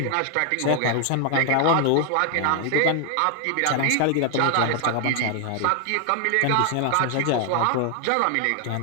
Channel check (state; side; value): different; both; correlation 0.00